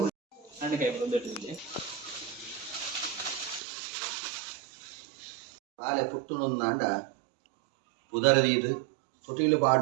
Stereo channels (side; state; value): left; drops out; at 3.6 s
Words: ಪಾಲೆ ಪುಟ್ಟುನೊಂದಾಂಡ ಉದರದೀದು ತೊಟಿಲು